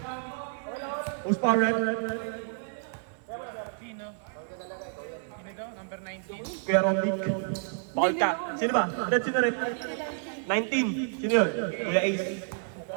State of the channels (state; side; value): silent; left; 58 dB below the other